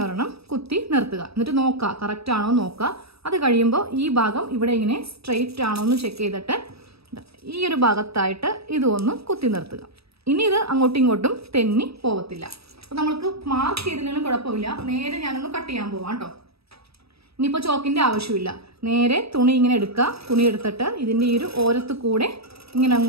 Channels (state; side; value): late; left; 0.77 ms